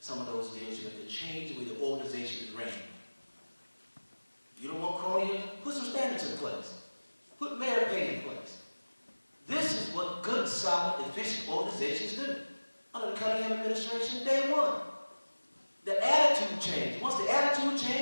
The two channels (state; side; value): inverted; both; correlation -1.00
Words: of those deals, you have to change the way the organization is ran. You don't want cronyism? Put some standards in place. Put merit pay in place. This is what good, solid, efficient organizations do. Under the Cunningham administration, day one. The attitude changed. Once the attitude